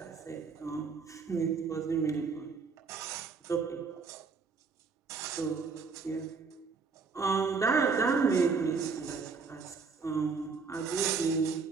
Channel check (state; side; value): quieter; left; 4.9 dB